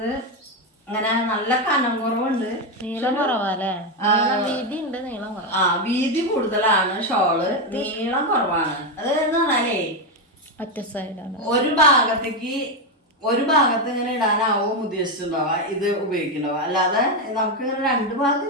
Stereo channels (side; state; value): both; normal; correlation 0.08